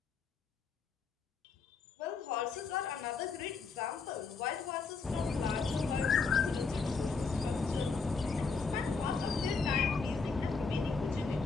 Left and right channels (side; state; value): right; quieter; 4.7 dB